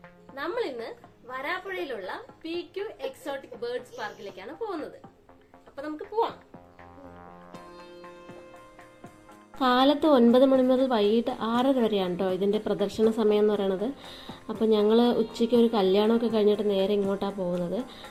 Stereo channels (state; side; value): identical; both; correlation 1.00